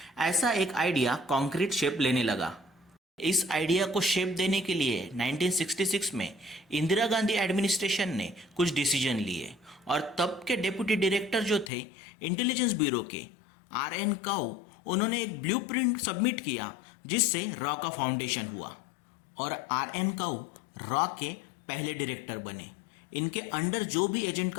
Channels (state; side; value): drops out; right; at 11.7 s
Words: ऐसा एक आइडिया कॉन्क्रीट शेप लेने लगा। इस आइडिया को शेप देने के लिए 1966 में इंदिरा गांधी एडमिनिस्ट्रेशन ने कुछ डिसीजन लिए और तब के डेप्यूटी डायरेक्टर जो थे इंटेलिजेंस ब्यूरो के RN काउ, उन्होंने एक ब्लूप्रिंट सबमिट किया जिससे रॉ का फाउंडेशन हुआ और RN काउ रॉ के पहले डायरेक्टर बने। इनके अंडर जो भी एजेंट